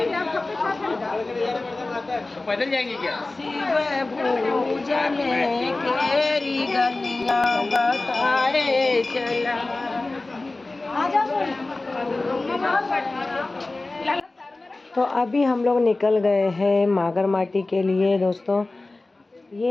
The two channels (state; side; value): quieter; right; 3.1 dB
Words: पैदल जाएंगे क्या? शिव पूजन केरी गलियां बताए चला। तो अभी हम लोग निकल गए हैं मागरमाटी के लिए दोस्तों।